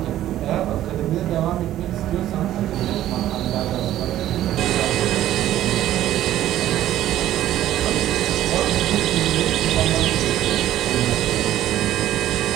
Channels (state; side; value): quieter; left; 13.0 dB